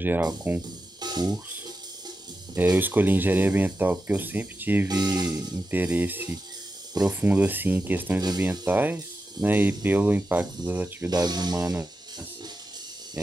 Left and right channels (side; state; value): both; normal; correlation 0.90